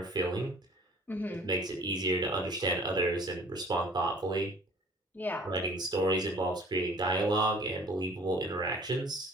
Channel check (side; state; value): both; normal; correlation 0.52